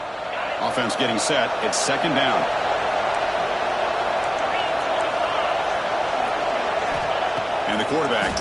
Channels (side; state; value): both; identical; correlation 1.00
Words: Offense getting set. It's 2nd down. And the quarterback